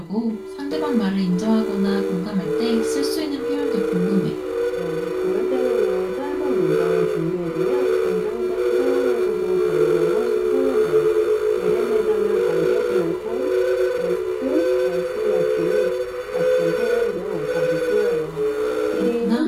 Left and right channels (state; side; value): identical; both; correlation 1.00